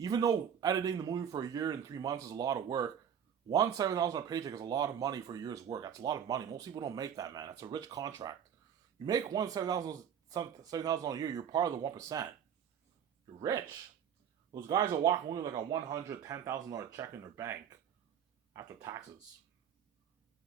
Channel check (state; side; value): quieter; left; 8.5 dB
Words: though editing the movie for a year and 3 months is a lot of work, $7,000 paycheck is a lot of money for a year's work. That's a lot of money. Most people don't make that, man. That's a rich contract. You make $7,000 a year, you're part of the 1%. You're rich. Those guys are walking away with like a $110,000 check in their bank after taxes.